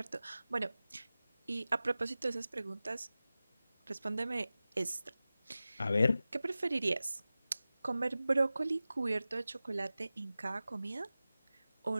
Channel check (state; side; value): inverted; both; correlation -0.95